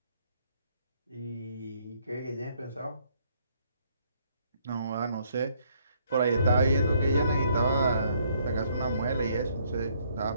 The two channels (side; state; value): both; inverted; correlation -0.67